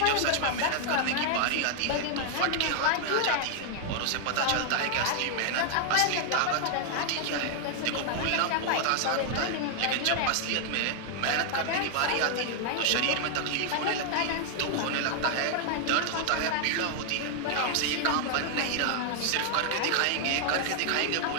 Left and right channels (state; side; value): different; both; correlation 0.00